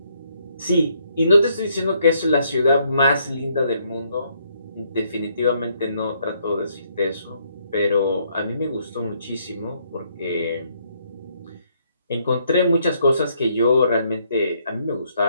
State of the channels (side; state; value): both; inverted; correlation -0.71